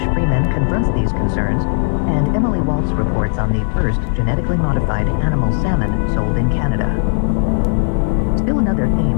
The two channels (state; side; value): silent; right; digital silence